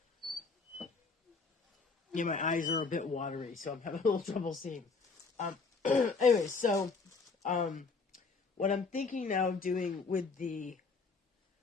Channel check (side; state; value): right; quieter; 4.5 dB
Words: Yeah, my eyes are a bit watery, so I'm having a little trouble seeing. Anyway, so, what I'm thinking now of doing with the,